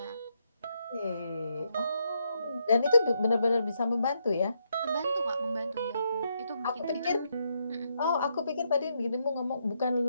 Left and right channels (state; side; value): inverted; both; correlation -0.79